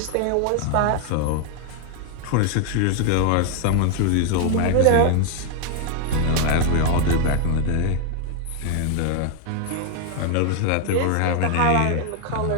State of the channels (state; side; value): different; both; correlation 0.00